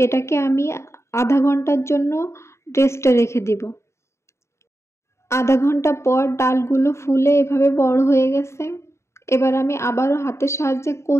এটাকে আমি আধা ঘন্টার জন্য রেস্টে রেখে দিব। আধা ঘন্টা পর ডালগুলো ফুলে এভাবে বড় হয়ে গেছে। এবার আমি আবারও হাতের সাহায্যে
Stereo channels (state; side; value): late; right; 0.13 ms